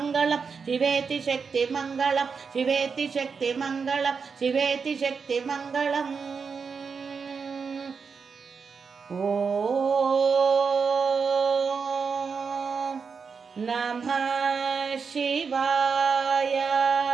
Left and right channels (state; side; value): quieter; left; 5.6 dB